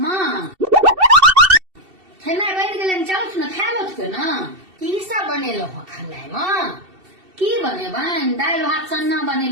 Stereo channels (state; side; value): late; left; 2.7 ms